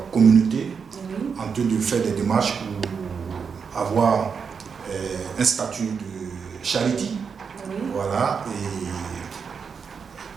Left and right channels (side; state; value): left; quieter; 6.1 dB